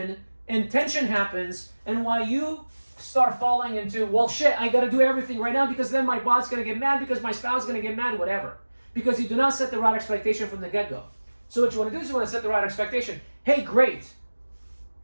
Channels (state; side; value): inverted; both; correlation -1.00